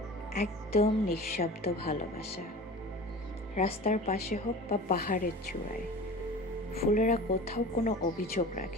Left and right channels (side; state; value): both; normal; correlation 0.37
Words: একদম নিঃশব্দ ভালোবাসা। রাস্তার পাশে হোক বা পাহাড়ের চূড়ায়, ফুলেরা কোথাও কোনো অভিযোগ